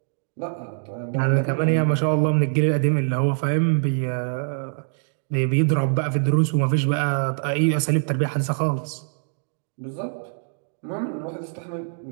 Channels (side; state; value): left; silent; digital silence